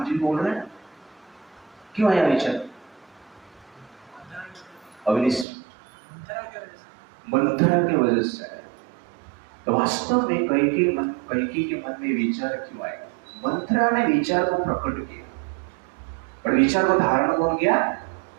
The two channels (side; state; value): left; drops out; at 5.5 s